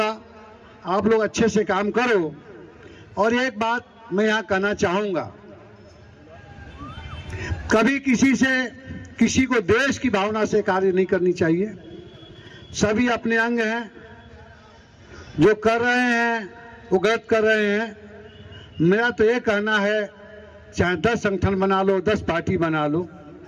आप लोग अच्छे से काम करो। और एक बात मैं यहाँ कहना चाहूंगा, कभी किसी को देश की भावना से कार्य नहीं करनी चाहिए। सभी अपने अंग हैं, जो कर रहे हैं वो गलत कर रहे हैं। मेरा तो ये कहना है, चाहे 10 संगठन बना लो, 10 पार्टी बना लो,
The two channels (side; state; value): both; identical; correlation 1.00